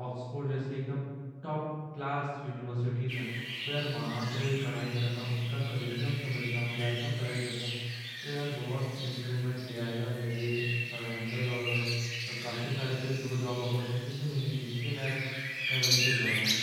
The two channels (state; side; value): identical; both; correlation 1.00